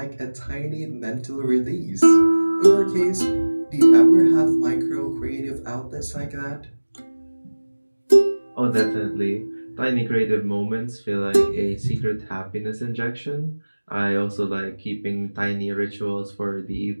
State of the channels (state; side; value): inverted; both; correlation -1.00